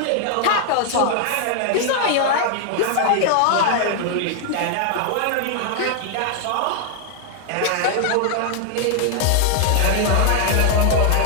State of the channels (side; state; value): both; different; correlation 0.00